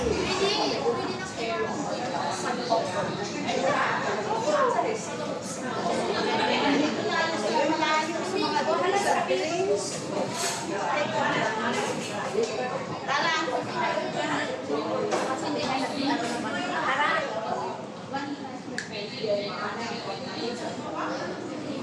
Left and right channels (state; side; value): identical; both; correlation 1.00